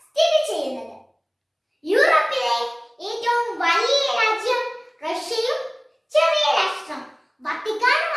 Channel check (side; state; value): both; identical; correlation 1.00